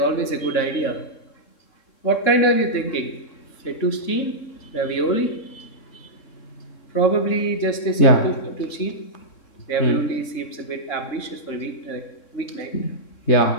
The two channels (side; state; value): right; late; 3.7 ms